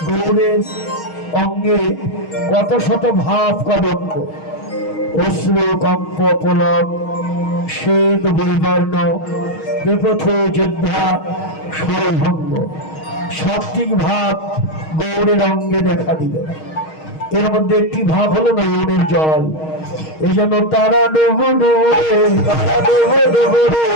গৌরের অঙ্গে কত শত ভাব কদম্ব, অশ্রু কম্প পুলক শ্বেত বৈবর্ণ বেপথ যোদ্ধা সরভঙ্গ সাত্বিক ভাব গৌরের অঙ্গে দেখা দিল। এর মধ্যে একটি ভাব হলো নয়নের জল, এই জন্য তারা ডুবো ডুবো তারা ডুবো ডুবো রে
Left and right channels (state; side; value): late; right; 6.4 ms